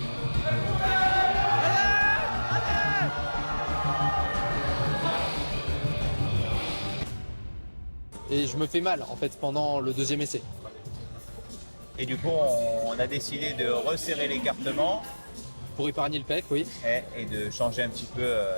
et je me fais mal en fait pendant le deuxième essai. Et du coup, on a décidé de resserrer l'écartement Pour épargner le pec, oui. et de changer un petit peu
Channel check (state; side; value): inverted; both; correlation -1.00